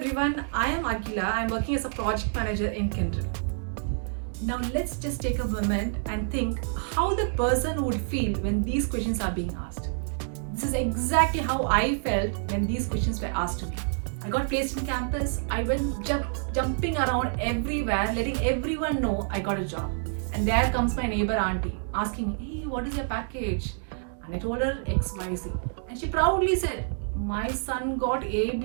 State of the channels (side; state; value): left; silent; digital silence